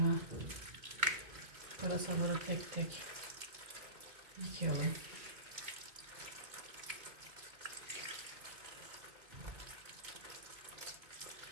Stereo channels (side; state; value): left; late; 2.2 ms